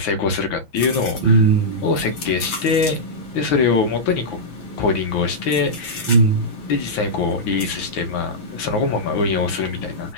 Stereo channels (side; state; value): right; late; 6.0 ms